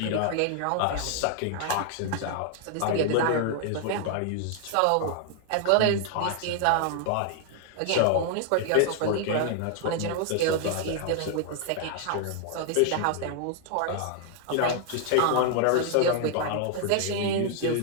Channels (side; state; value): both; different; correlation 0.00